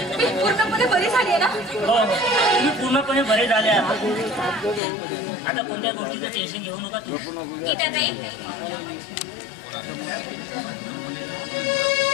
मी पूर्णपणे बरी झाली आहे ना तुम्ही पूर्णपणे बरे झाले आहात आता कोणत्या गोष्टीचं टेन्शन घेऊ नका तू गीताताई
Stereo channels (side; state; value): right; drops out; at 4.8 s